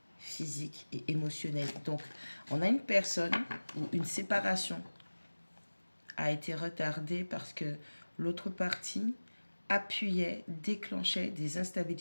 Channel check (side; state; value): both; inverted; correlation -1.00